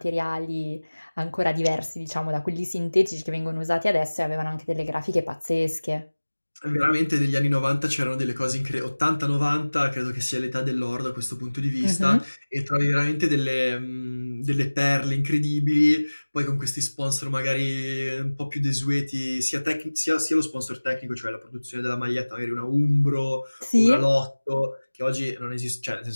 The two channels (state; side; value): inverted; both; correlation -1.00